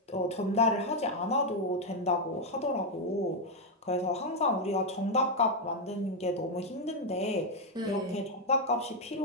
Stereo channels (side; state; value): both; normal; correlation 0.02